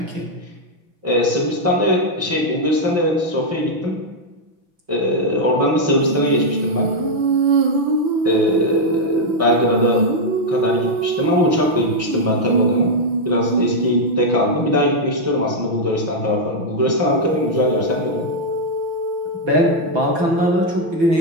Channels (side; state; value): left; late; 6.0 ms